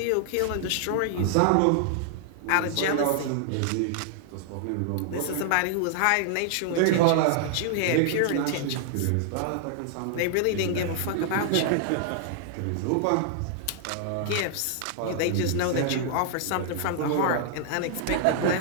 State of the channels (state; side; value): different; both; correlation -0.01